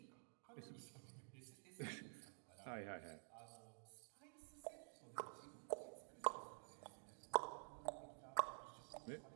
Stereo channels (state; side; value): silent; left; digital silence